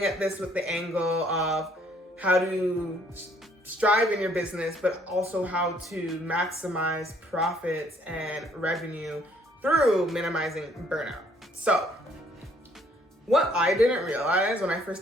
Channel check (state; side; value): normal; both; correlation 0.64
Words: at this with the angle of how to strive in your business, but also how to maximize profits and revenue through minimizing burnout. So what I didn't realize when I